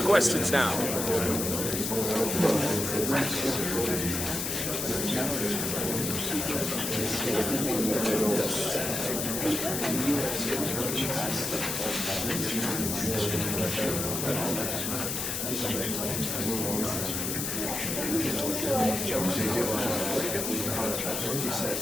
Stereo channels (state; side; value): noise; left; hiss, 2 dB below the sound